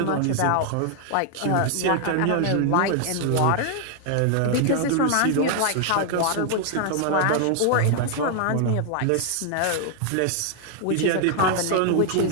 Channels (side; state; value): both; different; correlation 0.00